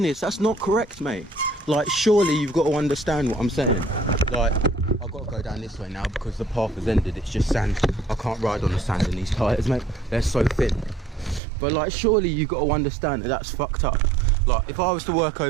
that's not correct, mate. Like, surely you've got to understand what I'm saying. Like, I've got to go down this way now because the path has ended, it's just sand. I can't ride on the sand in these tyres, mate, they're so thin. But like, surely you've got to understand that that's fucked up. Like, if I was to work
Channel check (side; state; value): left; drops out; at 11.4 s